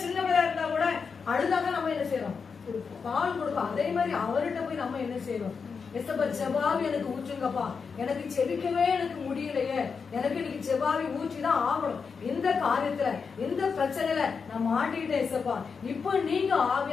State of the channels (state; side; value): quieter; right; 5.5 dB